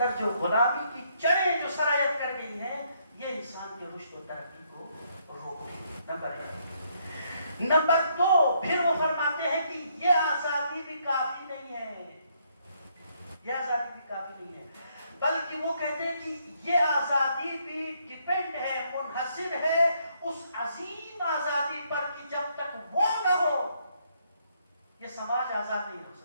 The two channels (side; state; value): both; inverted; correlation -0.72